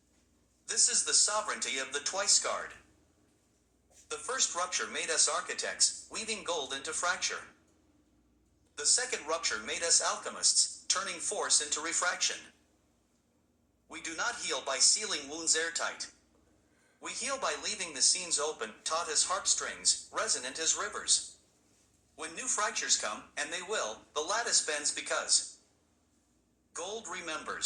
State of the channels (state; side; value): identical; both; correlation 1.00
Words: This is the sovereignty of the twice-scarred. The first rupture made us architects, weaving gold into fracture. The second rupture made us alchemists, turning force into refraction. We do not heal by sealing wounds airtight. We heal by leaving the seams open, taut as harpstrings, resonant as rivers. When new fractures come, and they will, the lattice bends because gold